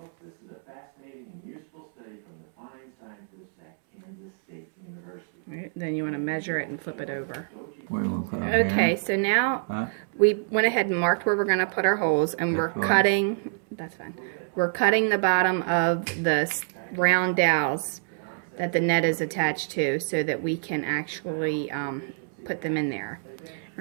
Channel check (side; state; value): left; silent; 60 dB below the other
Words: this is a fascinating and useful study from the fine scientists at Kansas State University. Right, then you want to measure it and flip it over. Okay, so now we went ahead and marked where we're going to put our holes, and we're cutting, that's fine, we're cutting the bottom of the round dowels that the net is attached to so that we can actually put them in there.